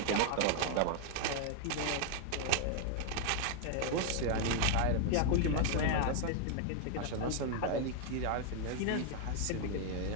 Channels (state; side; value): different; both; correlation 0.00